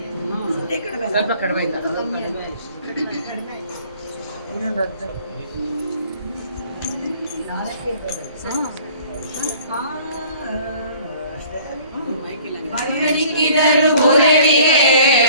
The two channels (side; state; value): both; inverted; correlation -0.52